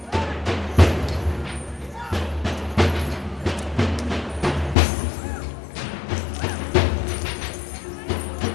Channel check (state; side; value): drops out; right; at 4.8 s